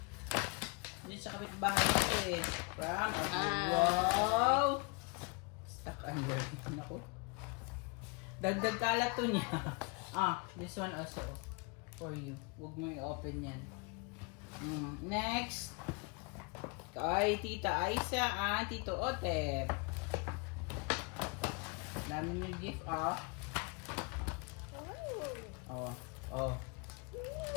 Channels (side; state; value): right; quieter; 30.8 dB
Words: Dito sa kapitbahay ito eh. From Abiel. Wow. Stuck under. Naku. Dagdag kalat to niya. This one also for you. Huwag mo i-open yan. Next. Kay Tita Aisa at Tito Otep. Dami yung gift,